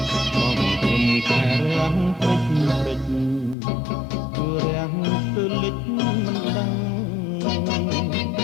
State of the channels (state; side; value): drops out; right; at 3.6 s